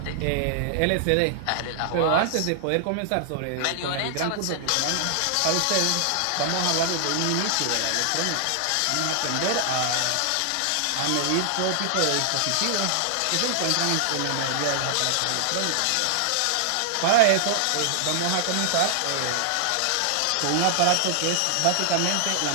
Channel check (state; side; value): different; both; correlation -0.01